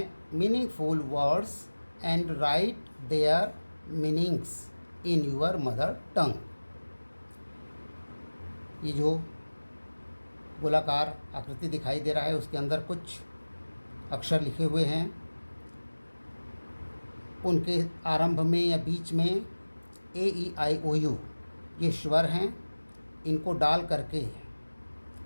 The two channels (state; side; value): inverted; both; correlation -1.00